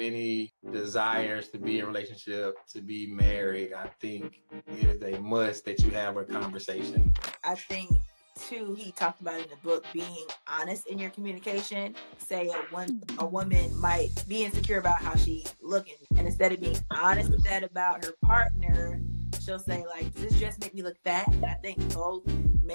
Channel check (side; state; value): both; inverted; correlation -1.00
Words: desires to be in a relationship, to be married, I think it is a must that you have a conversation. I think too, he talked about in the book being honest in your communication. Say a woman might be insecure about how she's looking, and instead of being honest with that about her partner, she'll say like, does this dress make me look fat? And I think both